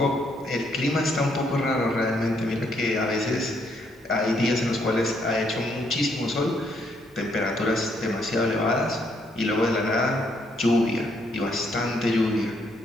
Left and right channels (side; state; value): both; normal; correlation 0.72